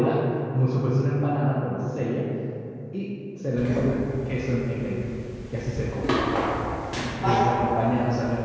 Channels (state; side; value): identical; both; correlation 1.00